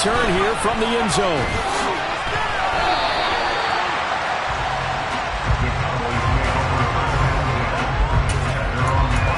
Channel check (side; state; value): both; identical; correlation 1.00